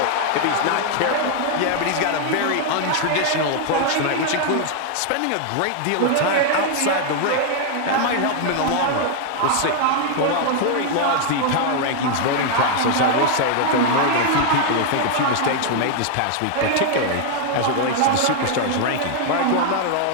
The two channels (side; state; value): both; different; correlation 0.00